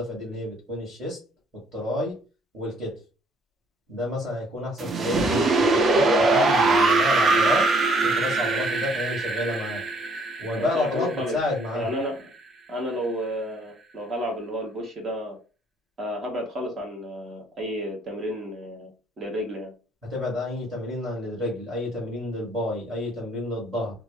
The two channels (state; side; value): normal; both; correlation 0.63